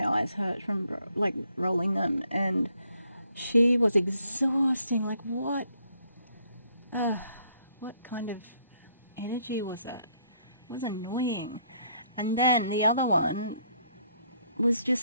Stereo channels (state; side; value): inverted; both; correlation -0.69